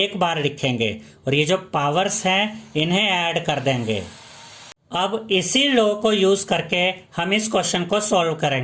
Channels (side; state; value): both; identical; correlation 1.00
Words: बार लिखेंगे और ये जो पावर्स हैं इन्हें ऐड कर देंगे। अब इसी लॉ को यूज करके हम इस क्वेश्चन को सॉल्व